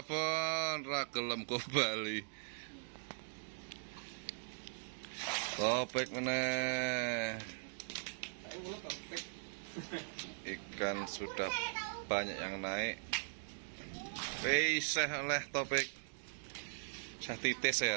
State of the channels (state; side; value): silent; left; digital silence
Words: ra gelem Bali. Topik meneh. Ikan sudah banyak yang naik. Wis oleh Topik. Titis ya